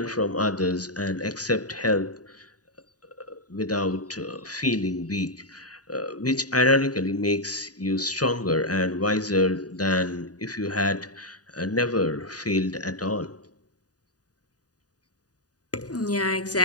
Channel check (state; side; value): late; right; 0.68 ms